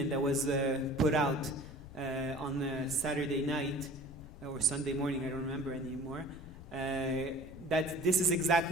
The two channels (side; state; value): left; noise; rumble, 16 dB below the sound